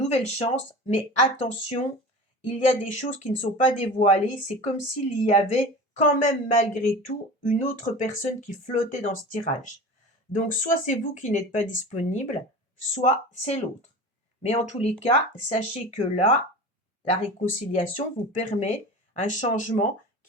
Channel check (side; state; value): both; normal; correlation 0.34